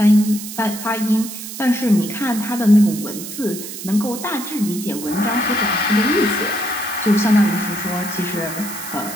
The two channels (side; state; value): right; noise; hiss, 10 dB below the sound